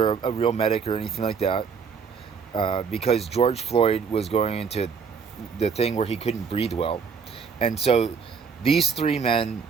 a real medic or anything like that, because George Floyd was going into the thing where he couldn't breathe well. And so these three men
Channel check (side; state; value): left; quieter; 6.0 dB